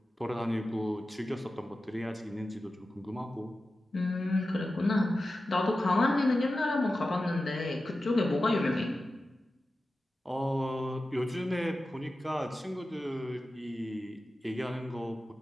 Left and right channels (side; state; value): both; normal; correlation 0.93